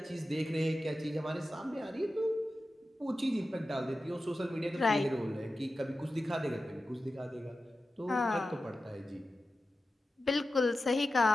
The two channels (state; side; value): normal; both; correlation 0.93